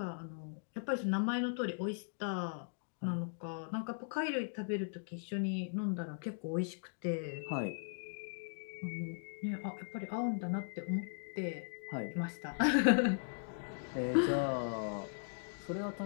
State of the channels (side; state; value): right; silent; digital silence